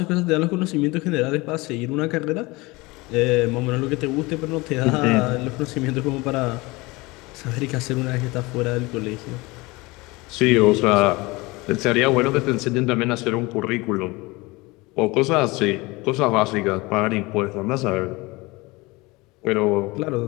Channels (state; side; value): quieter; right; 23.3 dB